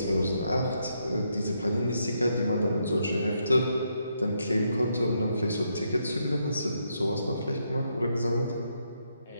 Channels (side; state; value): both; inverted; correlation -0.78